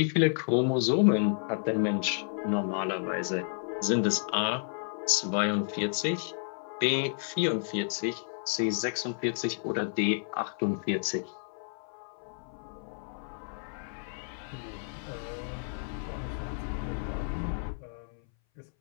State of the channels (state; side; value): silent; right; 57 dB below the other